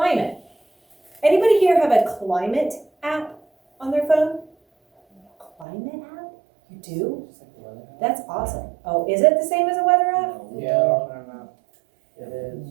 Anybody here have a climate app on their phone? Climate app? You do? That's awesome. Oh, is it the same as a weather app? Yeah. It is.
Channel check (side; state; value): left; drops out; at 5.7 s